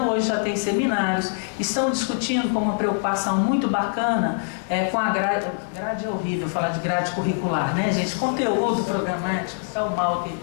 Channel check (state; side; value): silent; right; digital silence